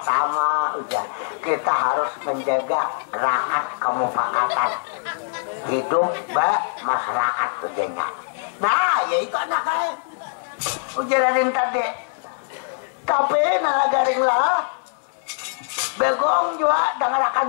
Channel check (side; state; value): right; silent; digital silence